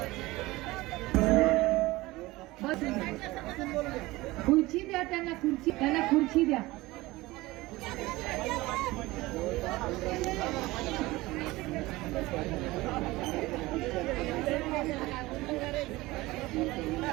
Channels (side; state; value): left; quieter; 19.8 dB